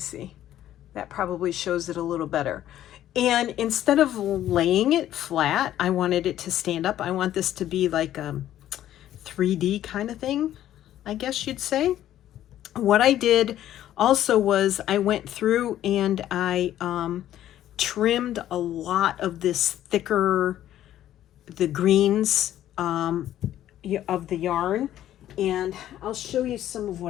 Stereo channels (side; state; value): right; quieter; 12.3 dB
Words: That probably shows it a little better. And instead of laying it flat, I wanted it to stand up. I want this to be like a 3D kind of thing, I guess you'd say. What I did also was I went through and I trimmed a lot of this thicker, the greens of the yarn. And I'll show you some of